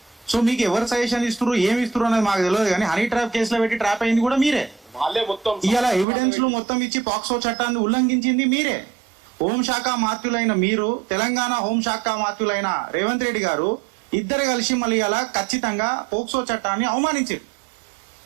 సో మీకు ఎవరు సజెషన్ ఇస్తున్నారు, ఏమి ఇస్తున్నారు అనేది మాకు తెలియదు, కానీ హనీ ట్రాప్ కేసులో పెట్టి ట్రాప్ అయింది కూడా మీరే. ఇలా ఎవిడెన్స్లు మొత్తం ఇచ్చి పాక్సో చట్టాన్ని ఉల్లంఘించింది మీరే. హోంశాఖ మాత్యులైన మీరు, తెలంగాణ హోంశాఖ మాత్యులైన రేవంత్ రెడ్డి గారు ఇద్దరు కలిసి మళ్ళీ ఇలా ఖచ్చితంగా పోక్సో చట్టాన్ని అవమానించారు.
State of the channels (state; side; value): drops out; left; at 6.1 s